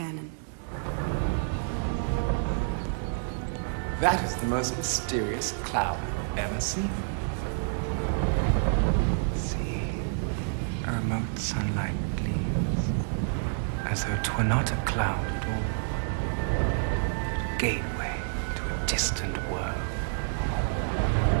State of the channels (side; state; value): left; silent; digital silence